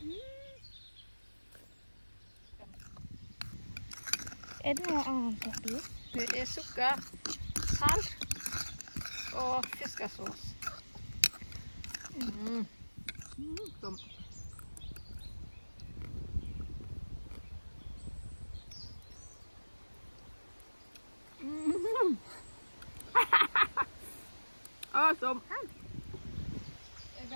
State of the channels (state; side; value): inverted; both; correlation -1.00